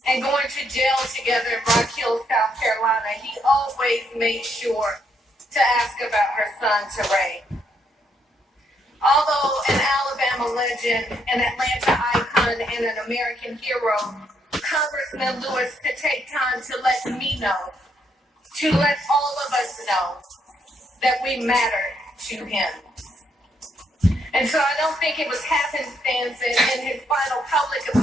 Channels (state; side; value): normal; both; correlation 0.74